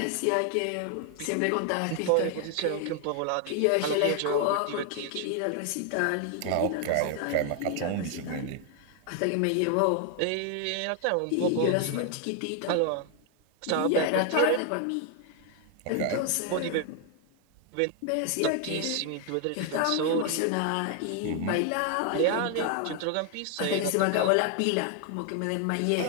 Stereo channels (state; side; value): different; both; correlation 0.00